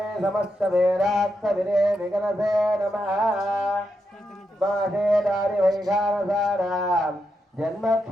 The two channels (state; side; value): normal; both; correlation 0.84